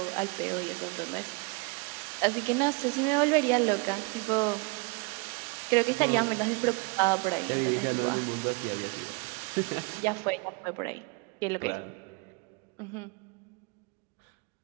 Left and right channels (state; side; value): quieter; left; 30.6 dB